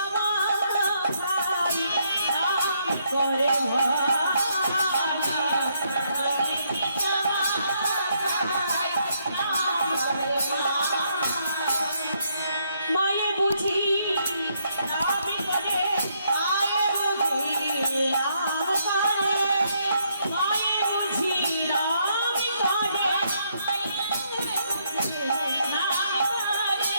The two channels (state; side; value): inverted; both; correlation -0.74